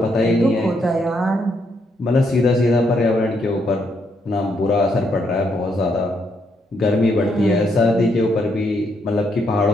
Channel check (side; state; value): both; normal; correlation 0.76